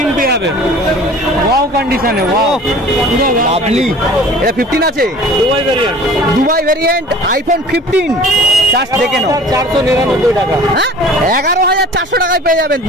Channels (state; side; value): normal; both; correlation 0.45